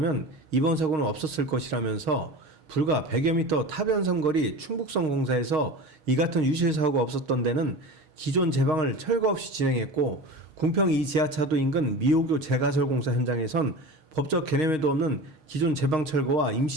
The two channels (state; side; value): late; left; 6.4 ms